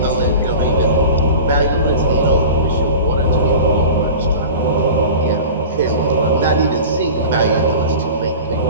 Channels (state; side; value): inverted; both; correlation -0.36